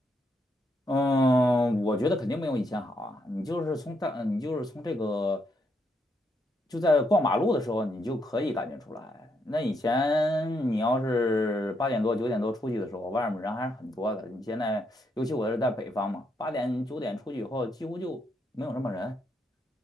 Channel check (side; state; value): both; normal; correlation 0.77